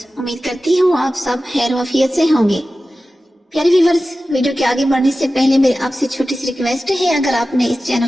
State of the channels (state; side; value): normal; both; correlation 0.95